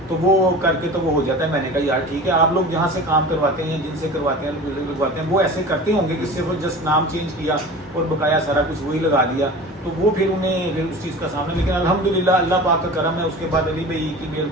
तो वो करके तो वो हो जाता है। मैंने कहा यार ठीक है, आप लोग जहाँ से काम करवाते हैं या जिनसे करवाते हैं लगवाते हैं, वो ऐसे करते होंगे कि सिर्फ जस्ट नाम चेंज किया और बकाया सारा कुछ वही लगा दिया, तो वो फिर उन्हें उस चीज़ का सामना। लेकिन अल्हम्दुलिल्लाह अल्लाह पाक का करम है, उसके बाद अली भाई की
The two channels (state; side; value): normal; both; correlation 0.36